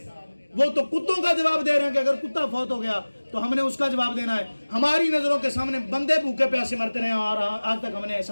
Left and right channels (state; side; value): inverted; both; correlation -1.00